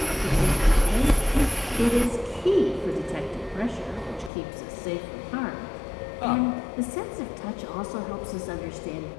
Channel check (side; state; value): right; drops out; at 4.3 s